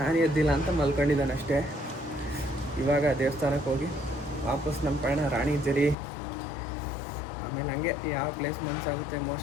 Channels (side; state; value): right; drops out; at 6.0 s